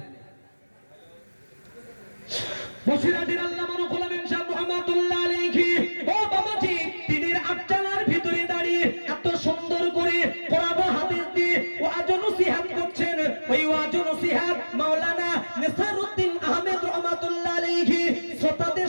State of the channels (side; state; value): both; inverted; correlation -1.00